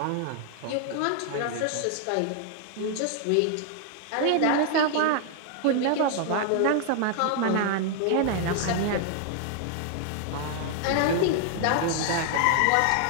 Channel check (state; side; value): different; both; correlation 0.00